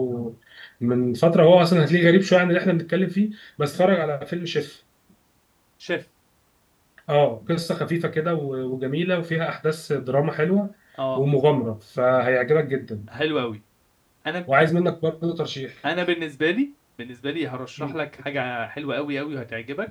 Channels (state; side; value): identical; both; correlation 1.00